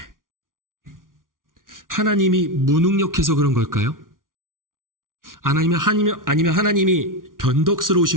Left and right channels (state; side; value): late; left; 0.89 ms